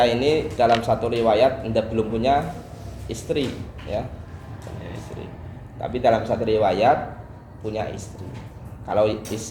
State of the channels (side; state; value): both; identical; correlation 1.00